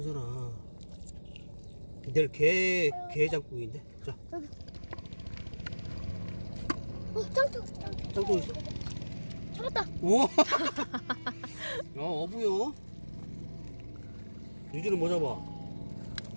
내일 개 장국인데. 자, 짱짱. 짱구 있어? 잡았다. 오! 야, 어부요. 유주는 뭐 잡아?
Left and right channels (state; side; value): inverted; both; correlation -1.00